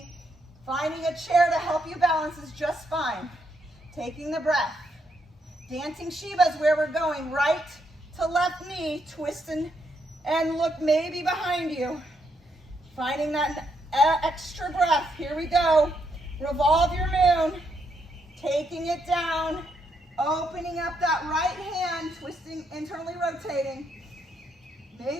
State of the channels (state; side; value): normal; both; correlation 0.77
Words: Finding a chair to help you balance is just fine. Taking the breath. Dancing Shiva is where we're going. Right to left knee, twist and look maybe behind you. Finding that extra breath. Here we go. Revolve your moon. Taking it down. Opening up that right hand, twisting, internally rotating.